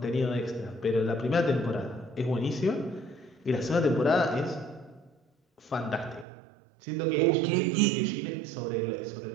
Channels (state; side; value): drops out; left; at 6.2 s